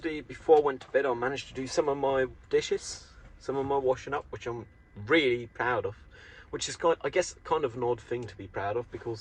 before I went to bed, I managed to do some of my dishes, some of my washing up, which I'm really proud of. Which is, I guess, kind of an odd thing to be proud of,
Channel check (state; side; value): identical; both; correlation 1.00